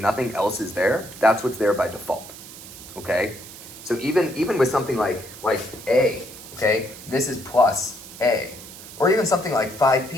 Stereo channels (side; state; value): right; noise; hiss, 15 dB below the sound